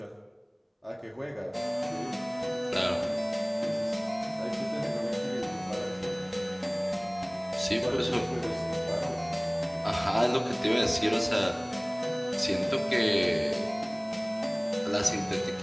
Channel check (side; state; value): both; identical; correlation 1.00